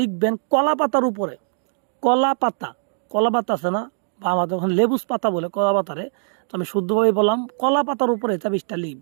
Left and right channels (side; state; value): left; silent; digital silence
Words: লিখবেন কলা পাতার উপরে। কলা পাতা আছে না, বা আমাদের ওখানে লেবুস পাতা বলে কলা পাতারে, তো আমি শুদ্ধভাবে বললাম কলা পাতার উপরে তাবিজটা